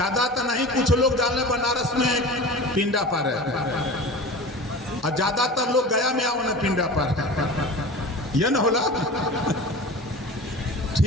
तो नहीं, कुछ लोग जान ले बनारस में पिंडा पर है और ज्यादातर लोग गया में आओ ना पिंडा पर। यह न होला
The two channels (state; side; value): normal; both; correlation 0.35